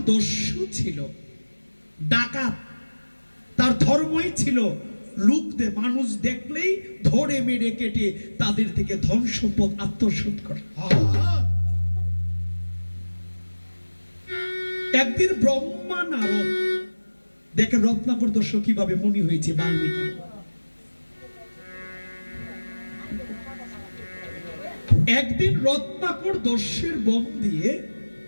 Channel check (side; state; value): both; inverted; correlation -1.00